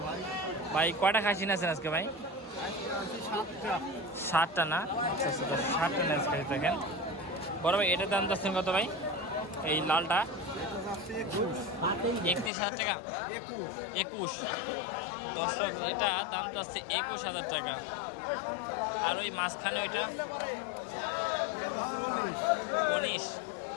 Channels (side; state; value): right; drops out; at 12.5 s